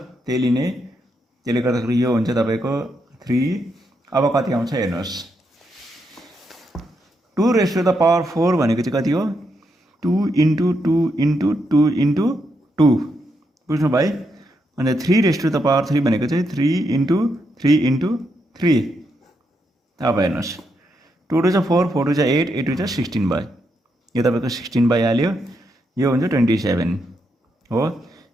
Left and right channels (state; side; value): normal; both; correlation 0.81